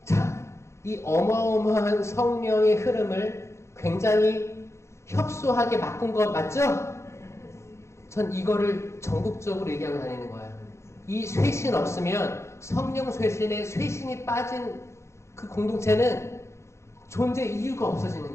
자, 이 어마어마한 성령의 흐름을 굉장히 협소하게 바꾼 거 맞죠? 전 이거를 전국적으로 얘기하고 다니는 거예요. 이 쇄신 없으면 성령 쇄신에 쇄신이 빠진 그 공동체는 존재 이유가 없어지는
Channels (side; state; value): right; late; 0.13 ms